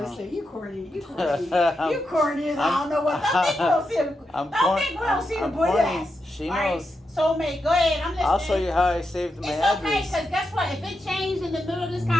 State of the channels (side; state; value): both; normal; correlation 0.86